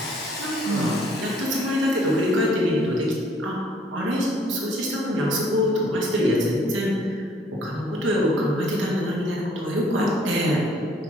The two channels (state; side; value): normal; both; correlation 0.61